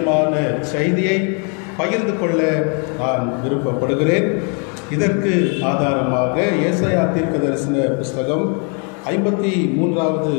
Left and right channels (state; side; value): quieter; right; 38.0 dB